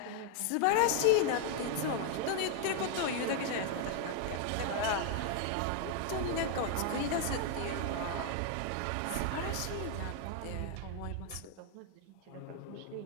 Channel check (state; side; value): different; both; correlation 0.00